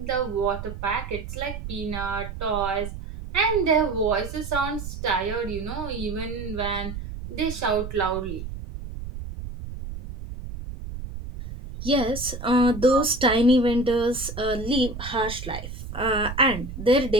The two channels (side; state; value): right; noise; rumble, 9 dB below the sound